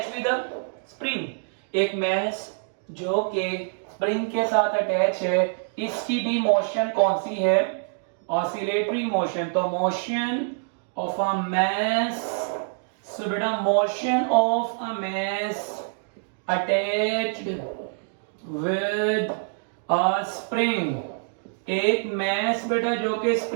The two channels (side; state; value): left; silent; digital silence